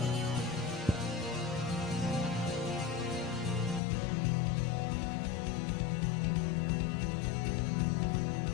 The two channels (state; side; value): drops out; right; at 3.8 s